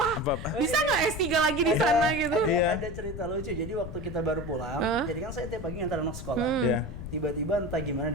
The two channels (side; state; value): left; noise; rumble, 9 dB below the sound